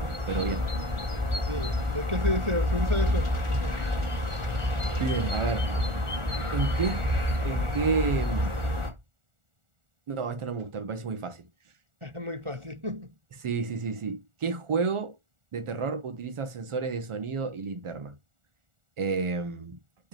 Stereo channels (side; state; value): left; late; 1.4 ms